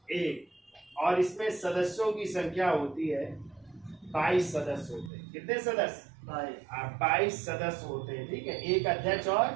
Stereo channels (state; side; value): drops out; left; at 5.1 s